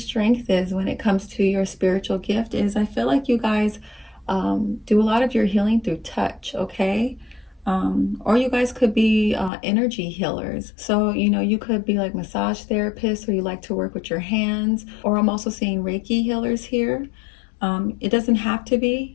is when it comes to your spiritual gift, is I feel like you guys do a lot of your healing through touch, okay? Or you guys could be energy healers. So, you know, you could be like massage therapists, or you like to work with your hands, or I'm also seeing Reiki healers here. It doesn't have to be,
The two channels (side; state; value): right; drops out; at 9.5 s